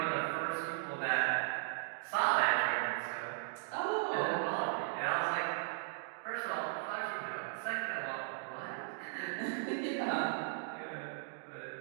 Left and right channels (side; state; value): left; silent; digital silence